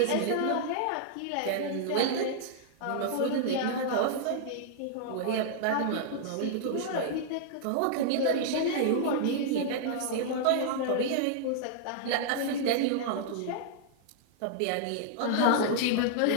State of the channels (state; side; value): different; both; correlation -0.01